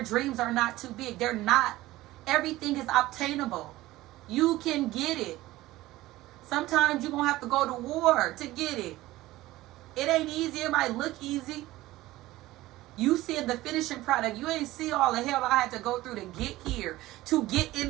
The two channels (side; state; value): left; quieter; 17.3 dB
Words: dreams are not too big. They're not. Everything is obtainable. You can get it. Sometimes you're going to have to go to war to get it. It ain't easy. It might look easy. You see the finishing product. You ain't see all the hell I had to go through to get here, to get